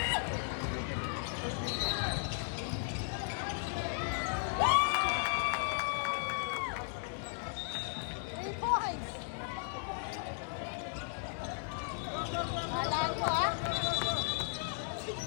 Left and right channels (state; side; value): silent; right; 54 dB below the other